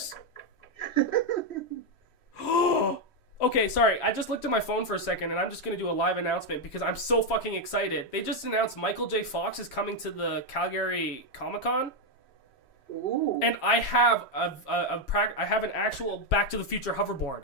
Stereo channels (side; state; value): right; late; 3.1 ms